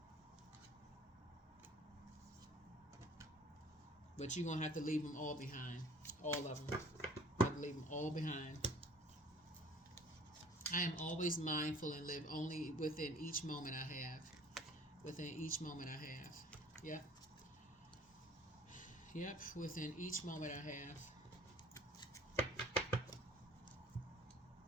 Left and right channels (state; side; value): normal; both; correlation 0.50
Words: But you're going to have to leave them all behind. All of them. You have to leave them all behind. I am always mindful and live only within each moment I have. Within each moment I have. Yep. Yep, within each moment I have.